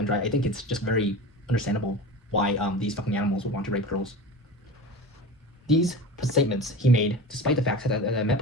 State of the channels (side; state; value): both; normal; correlation 0.32